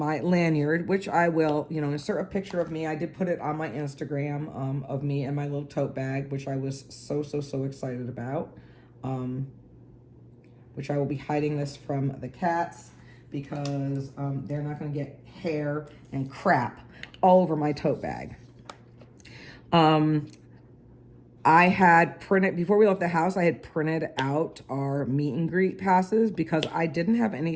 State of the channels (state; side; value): identical; both; correlation 1.00